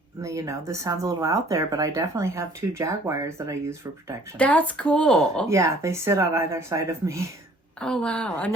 this sounds a little out there, but I definitely have 2 jaguars that I use for protection. That's cool. Yeah, they sit on either side of me. Oh, wow.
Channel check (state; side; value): normal; both; correlation 0.55